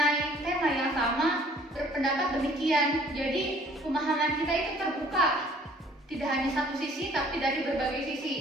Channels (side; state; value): both; normal; correlation 0.56